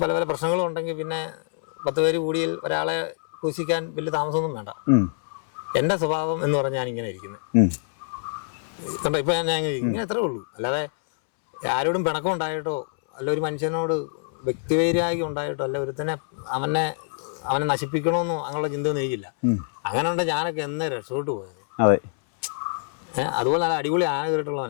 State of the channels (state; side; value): silent; right; 62 dB below the other